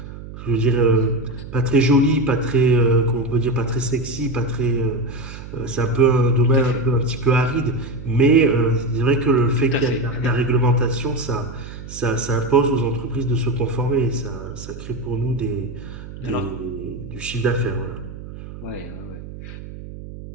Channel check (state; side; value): noise; right; hum, 13 dB below the sound